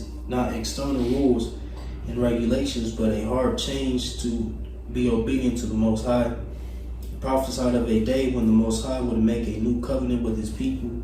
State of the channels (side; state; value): both; identical; correlation 1.00